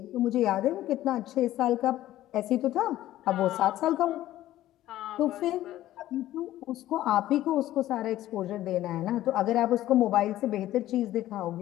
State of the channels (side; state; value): right; quieter; 14.1 dB